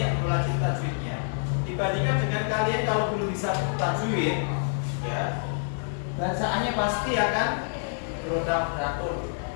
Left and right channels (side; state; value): right; silent; 60 dB below the other